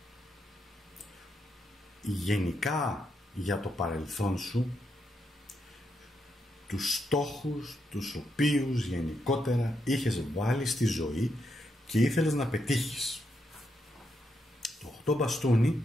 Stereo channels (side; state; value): both; normal; correlation 0.81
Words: γενικά για το παρελθόν σου, τους στόχους τους οποίους γενικότερα είχες βάλει στη ζωή και ήθελες να πετύχεις. Το 8 μπαστούνι